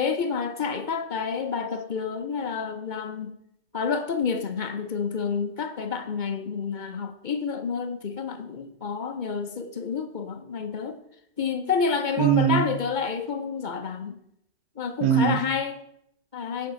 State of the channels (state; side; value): late; left; 2.2 ms